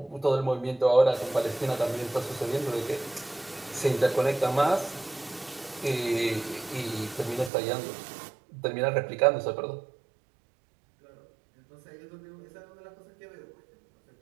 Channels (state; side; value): drops out; left; at 7.5 s